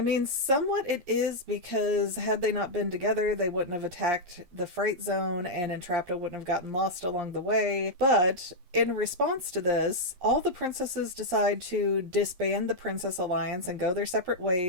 mean, somewhat it is, because had they not been together, they wouldn't have attacked the Fright Zone and Entrapta wouldn't have gotten lost along the way. But in response to this, all the princesses decide to disband the Princess Alliance and go their separate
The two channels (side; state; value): left; late; 11 ms